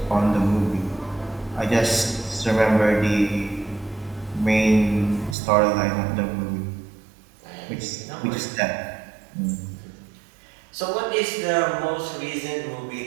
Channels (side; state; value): left; drops out; at 5.4 s